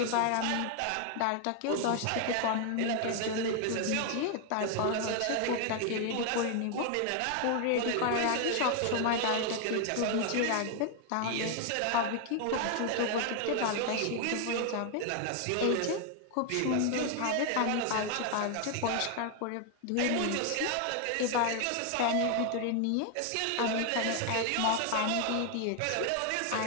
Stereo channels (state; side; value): different; both; correlation 0.00